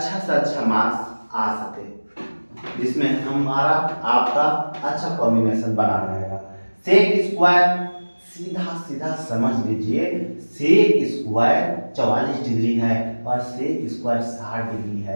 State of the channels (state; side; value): inverted; both; correlation -1.00